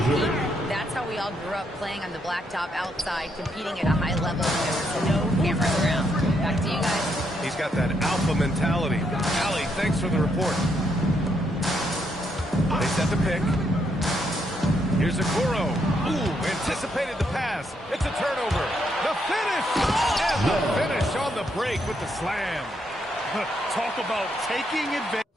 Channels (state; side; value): normal; both; correlation 0.76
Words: That's how we all grew up, playing on the blacktop outside, competing at a high level. There was no cameras around. Back to you guys. He's got that alpha mentality. Allie, thanks for the report. They set the pick. Here's Okoro. Ooh, anticipated the pass. It's a turnover. The finish! And the finish on the break with the slam. Talk about taking advantage.